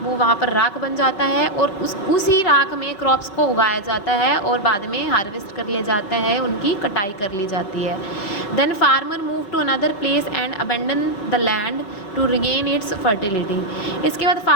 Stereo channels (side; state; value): right; late; 5.4 ms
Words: वहाँ पर राख बन जाता है, और उसी राख में क्रॉप्स को उगाया जाता है और बाद में हार्वेस्ट कर लिया जाता है, उनकी कटाई कर ली जाती है। Then farmer move to another place and abandon the land to regain its fertility. इसके बाद